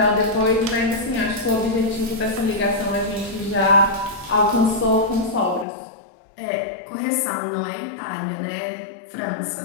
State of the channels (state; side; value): drops out; right; at 5.7 s